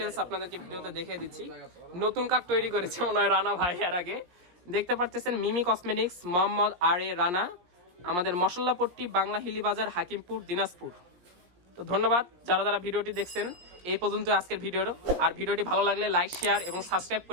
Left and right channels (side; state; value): left; late; 17 ms